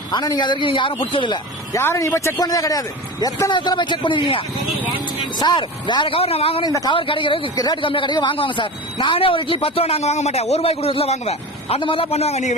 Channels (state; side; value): normal; both; correlation 0.29